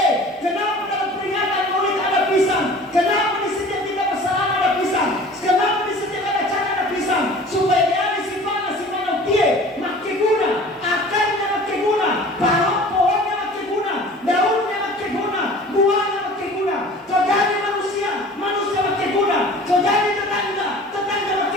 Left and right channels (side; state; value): both; normal; correlation 0.44